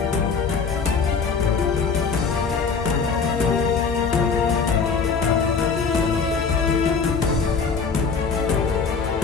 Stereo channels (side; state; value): right; quieter; 5.3 dB